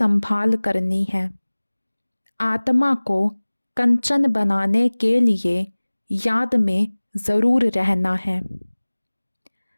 करनी है। आत्मा को कंचन बनाने के लिए याद में जरूर रहना है।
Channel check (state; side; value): inverted; both; correlation -1.00